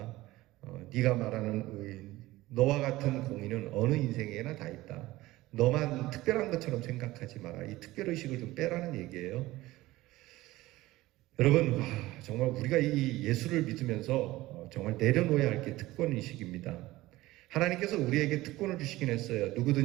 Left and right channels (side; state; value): left; quieter; 17.9 dB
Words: 네가 말하는 의인, 너와 같은 공의는 어느 인생에나 다 있다. 너만 특별한 것처럼 생각하지 마라. 이 특별의식을 좀 빼라는 얘기예요. 여러분, 정말 우리가 이 예수를 믿으면서 정말 내려놓아야 할 게 특권의식입니다. 하나님께서 우리에게 특권을 주시긴 했어요.